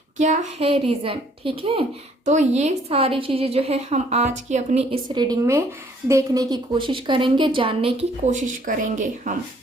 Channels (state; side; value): normal; both; correlation 0.62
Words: क्या है रीज़न। ठीक है, तो ये सारी चीज़ें जो है हम आज की अपनी इस रीडिंग में देखने की कोशिश करेंगे, जानने की कोशिश करेंगे हम।